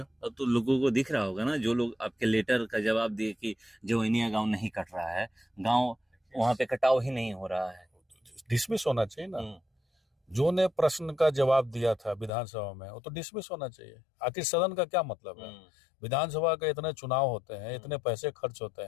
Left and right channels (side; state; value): right; drops out; at 12.3 s